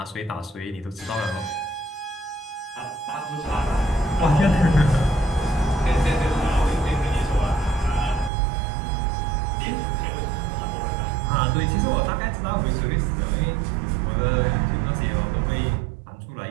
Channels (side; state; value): left; drops out; at 8.3 s